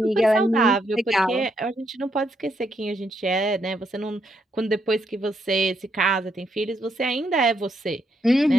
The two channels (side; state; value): both; normal; correlation 0.77